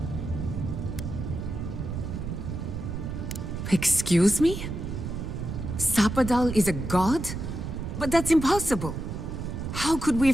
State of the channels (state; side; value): noise; right; rumble, 5 dB below the sound